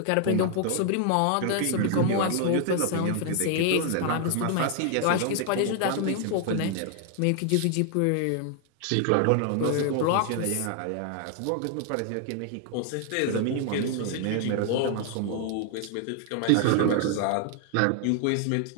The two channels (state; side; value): different; both; correlation 0.00